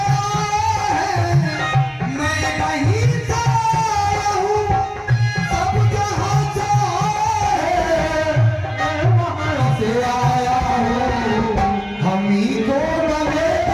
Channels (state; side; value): identical; both; correlation 1.00